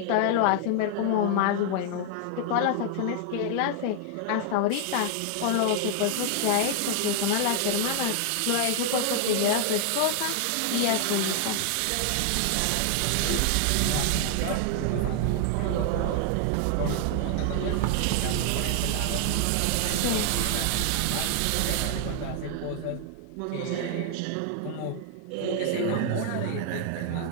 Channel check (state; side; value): different; both; correlation 0.00